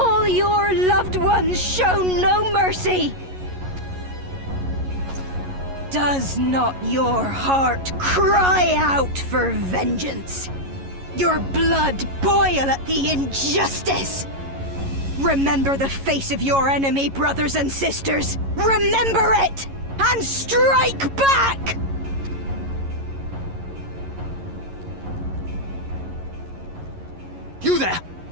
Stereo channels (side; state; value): left; late; 11 ms